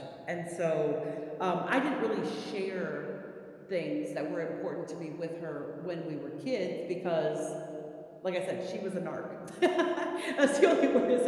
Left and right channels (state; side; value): identical; both; correlation 1.00